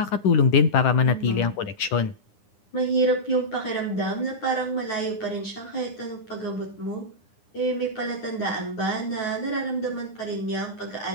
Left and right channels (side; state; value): right; late; 9.8 ms